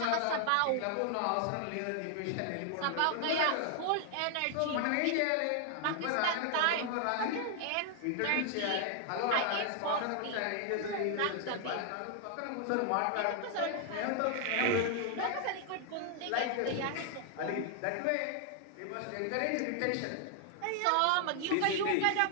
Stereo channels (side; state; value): both; different; correlation 0.00